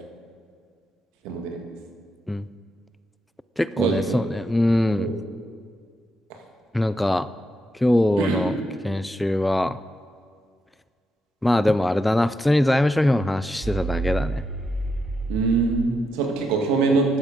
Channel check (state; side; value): normal; both; correlation 0.83